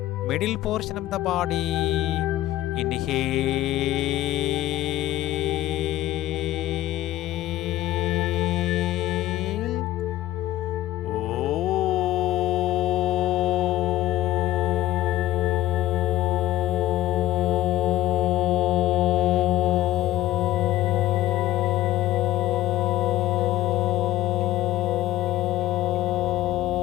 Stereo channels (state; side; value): quieter; right; 15.0 dB